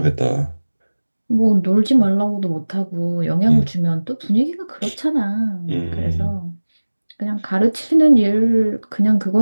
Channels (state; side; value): inverted; both; correlation -1.00